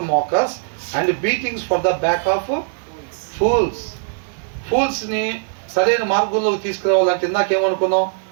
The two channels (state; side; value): silent; left; digital silence